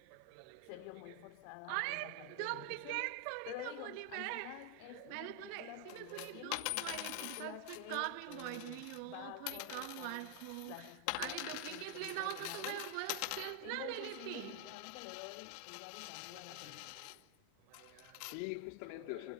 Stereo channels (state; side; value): different; both; correlation 0.00